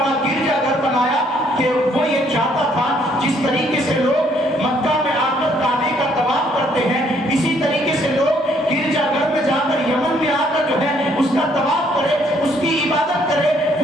گرجا گھر بنایا کہ وہ یہ چاہتا تھا جس طریقے سے لوگ مکہ میں آ کر کعبے کا طواف کرتے ہیں، اسی طریقے سے لوگ گرجا گھر میں جا کر، یمن میں آ کر جو ہے اس کا طواف کرے، اس کی عبادت کرے،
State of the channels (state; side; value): normal; both; correlation 0.66